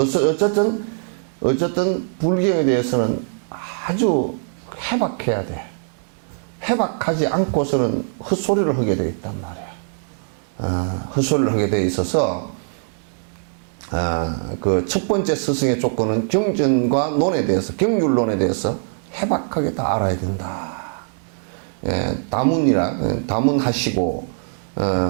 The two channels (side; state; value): left; silent; digital silence